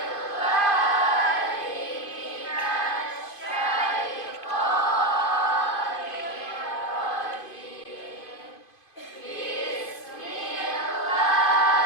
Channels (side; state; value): right; late; 2.5 ms